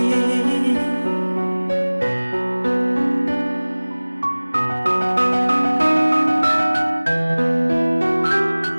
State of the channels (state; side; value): inverted; both; correlation -1.00